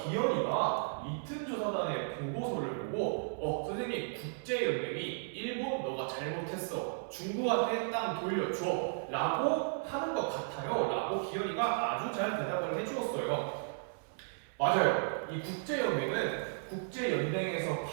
기현이가 리튼 조사단의 보고서를 보고 선생님 국제연맹이 일본 너가 잘못했어. 중국한테 땅 돌려줘 라고 하는 것 같아요 라고 기현이가 아주 잘 대답을 해주었어요. 맞아요. 이 국제연맹은 국제연맹에서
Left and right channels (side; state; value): left; silent; 55 dB below the other